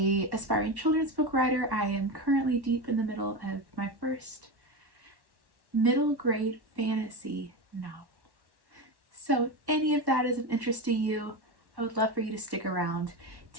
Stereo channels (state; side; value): late; left; 1.1 ms